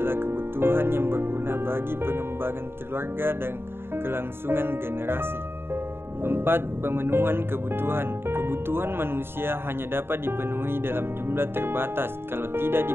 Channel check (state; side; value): late; left; 0.11 ms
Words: kebutuhan yang berguna bagi pengembangan keluarga dan kelangsungan generasi. 4. Pemenuhan kebutuhan. Kebutuhan manusia hanya dapat dipenuhi dalam jumlah terbatas. Kalau tidak